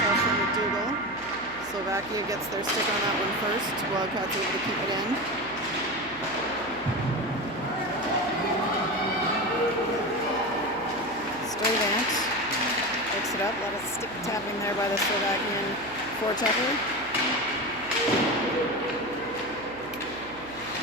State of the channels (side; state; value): right; noise; hum, 21 dB below the sound